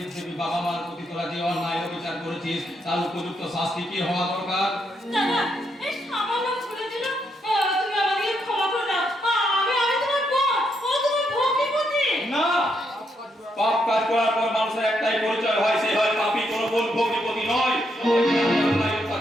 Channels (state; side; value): normal; both; correlation 0.78